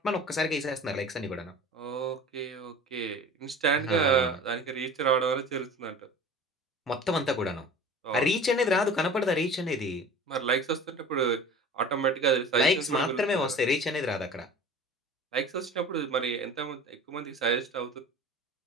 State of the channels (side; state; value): both; normal; correlation 0.40